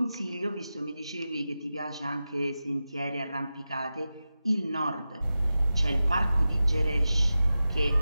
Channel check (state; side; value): inverted; both; correlation -0.93